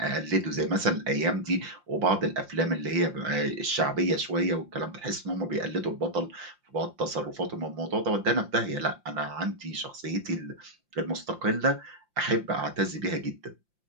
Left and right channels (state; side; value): late; left; 5.7 ms